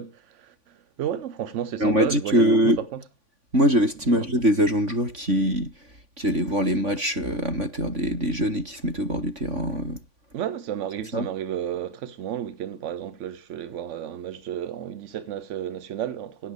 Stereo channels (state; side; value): late; left; 3.5 ms